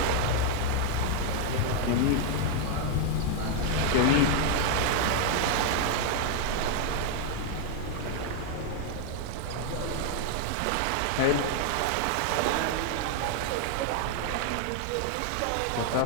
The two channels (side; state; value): both; different; correlation 0.00